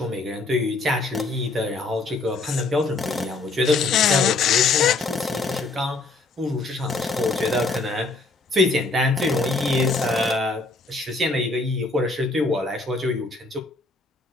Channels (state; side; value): quieter; right; 3.5 dB